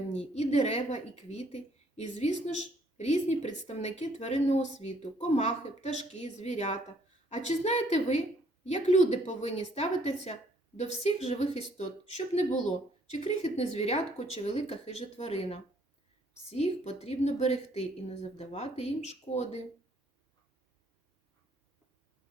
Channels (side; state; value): both; normal; correlation 0.65